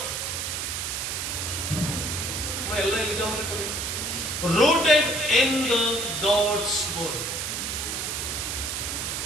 ಎಲ್ಲ ಎಲ್ಲಿದೆ ಕೊಡಿ. Rooted in the God's word.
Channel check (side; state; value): right; noise; hiss, 2 dB below the sound